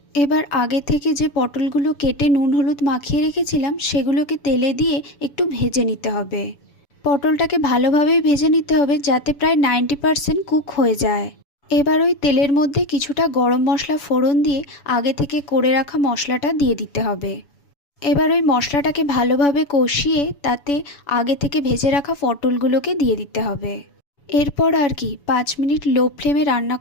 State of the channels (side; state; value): right; late; 7.0 ms